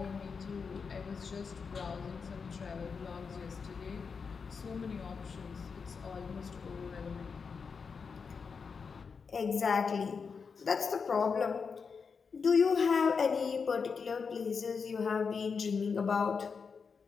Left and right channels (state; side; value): quieter; right; 5.5 dB